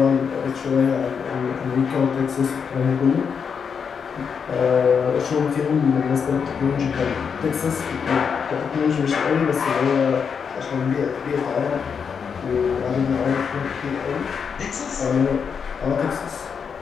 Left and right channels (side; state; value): right; quieter; 6.5 dB